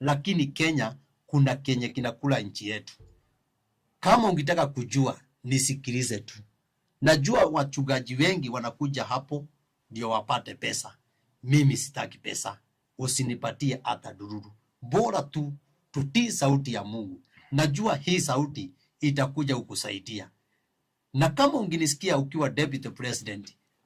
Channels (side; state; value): both; identical; correlation 1.00